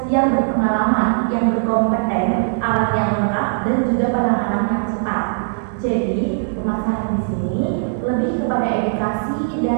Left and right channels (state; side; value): silent; left; 66 dB below the other